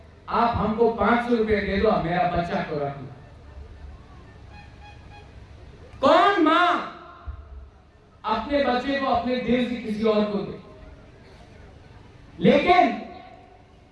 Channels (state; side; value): identical; both; correlation 1.00